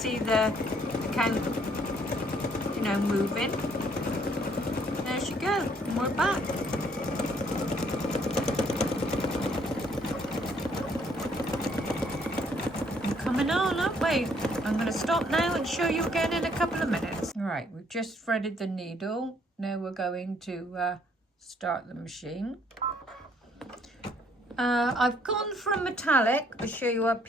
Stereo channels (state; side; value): normal; both; correlation 0.65